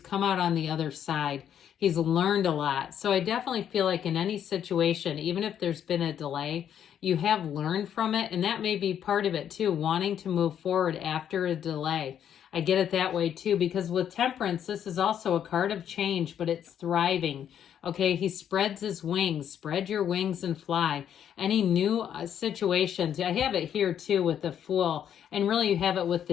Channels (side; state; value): right; quieter; 9.4 dB